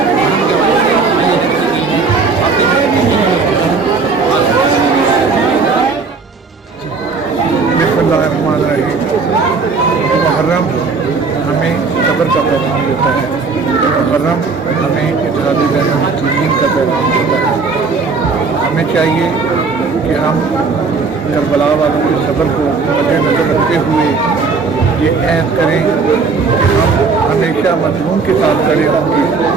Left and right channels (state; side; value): quieter; left; 4.6 dB